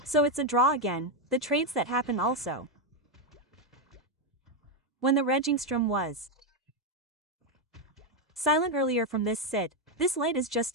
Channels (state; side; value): normal; both; correlation 0.05